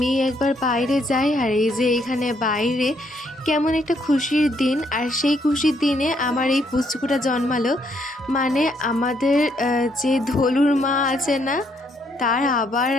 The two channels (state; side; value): normal; both; correlation 0.72